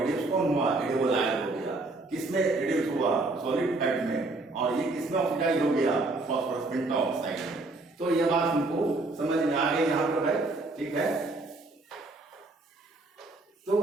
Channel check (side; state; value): left; quieter; 3.1 dB